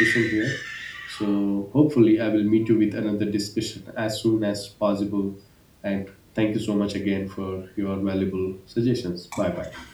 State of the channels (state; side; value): identical; both; correlation 1.00